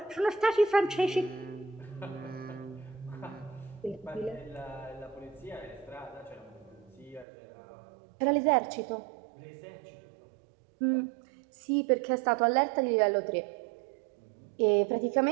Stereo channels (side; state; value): left; drops out; at 7.2 s